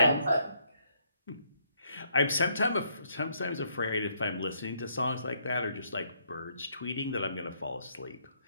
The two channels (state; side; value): inverted; both; correlation -0.71